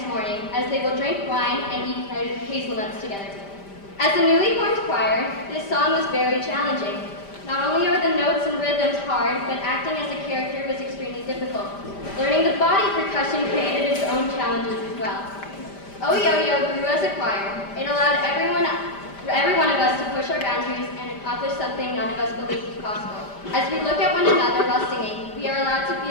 morning as they will drink wine and eat hazelnuts together. As a newly formed choir, this song was very challenging. Not only are the notes and rhythms hard, but acting as a character was extremely difficult. Learning the body percussion created its own challenges as well. Oh Yo-Yo grew as a choir. It allowed every one of us to push our boundaries and accomplish something none of us believed was possible. As we look at one another while singing, we are allowed to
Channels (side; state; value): right; late; 5.0 ms